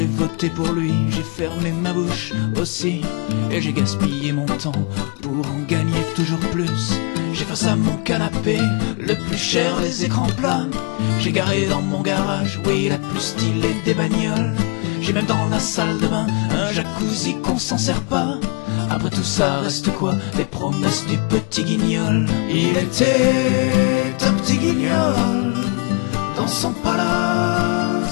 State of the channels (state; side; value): quieter; right; 32.2 dB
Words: voté pour lui, j'ai fermé ma bouche aussi, et j'ai gaspillé mon temps pour en gagner toujours plus. J'ai face à mon canapé le plus cher des écrans plats. J'ai garé dans mon garage, oui, la plus stylée des bagnoles. J'ai même dans la salle de bain un jacuzzi qu'on s'en sert pas. Après tout ça reste quoi? Les promesses du petit guignol. Il était un petit guignol dans son